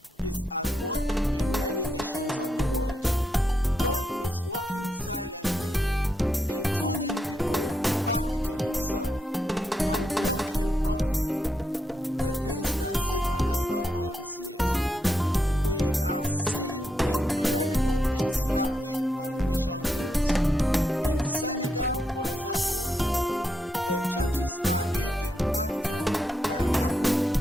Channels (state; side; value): normal; both; correlation 0.82